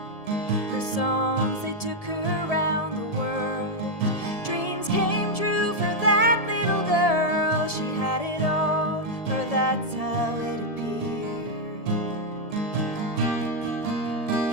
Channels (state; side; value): late; right; 1.7 ms